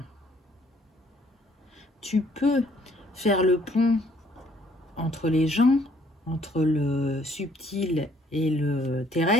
Tu peux faire le pont entre les gens, entre le subtil et le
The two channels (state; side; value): normal; both; correlation 0.63